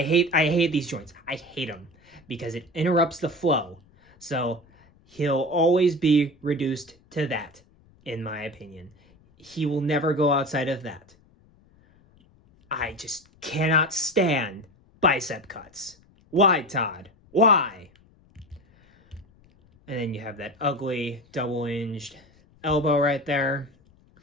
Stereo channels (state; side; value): noise; left; rumble, 30 dB below the sound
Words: hate these joints. I hate them because it interrupts the flow. So he'll always be reduced to that, in my opinion. He will never go outside of that. I just cannot stand bicep cuts. Why, Todd? Why? And then you have that ugly double-hinged elbow right there.